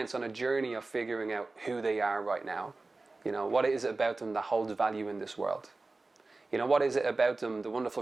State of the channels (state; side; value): quieter; left; 3.4 dB